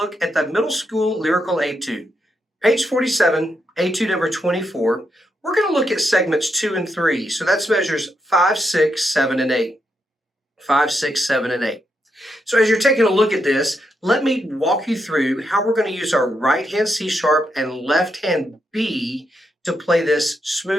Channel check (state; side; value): normal; both; correlation 0.81